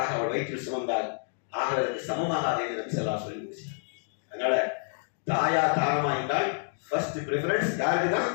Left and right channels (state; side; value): silent; right; digital silence